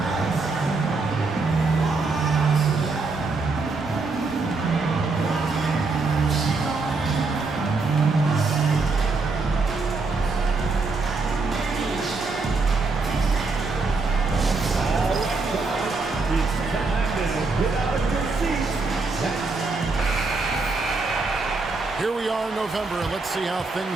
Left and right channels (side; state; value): left; quieter; 3.9 dB